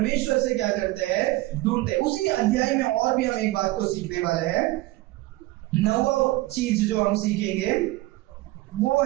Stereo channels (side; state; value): left; quieter; 18.9 dB